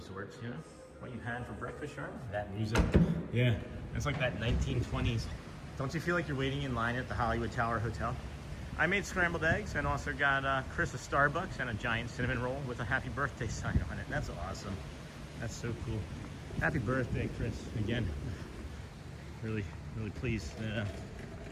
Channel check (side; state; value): both; identical; correlation 1.00